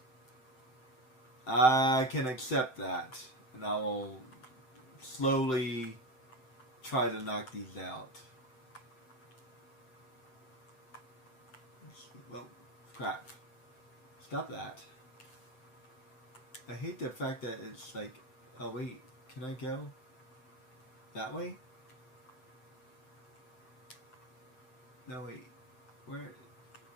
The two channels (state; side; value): late; right; 7.8 ms